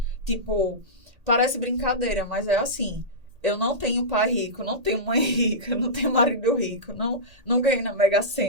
Tipo, parece brincadeira, mas é assim. Eu não tenho pai rico, não tenho mãe rica, não tenho marido rico, não ganhei na Mega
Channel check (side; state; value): left; late; 1.8 ms